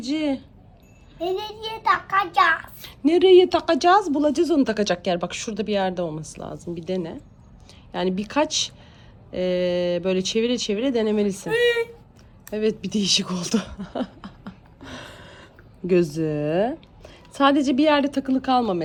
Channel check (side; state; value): both; identical; correlation 1.00